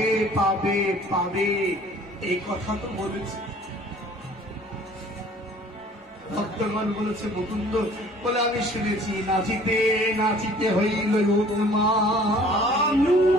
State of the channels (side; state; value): both; normal; correlation 0.52